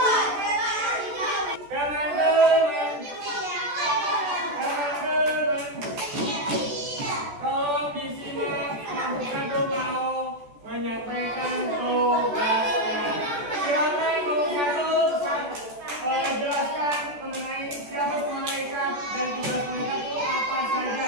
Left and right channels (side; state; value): left; late; 14 ms